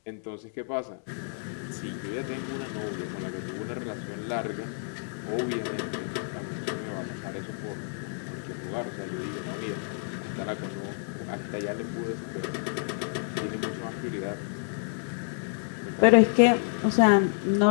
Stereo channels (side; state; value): right; silent; digital silence